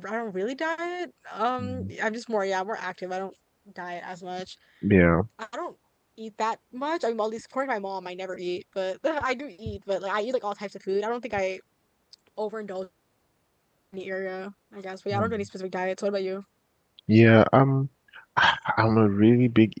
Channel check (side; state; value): both; identical; correlation 1.00